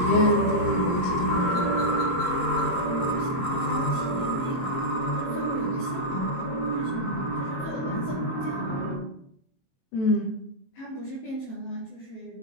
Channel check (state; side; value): late; right; 22 ms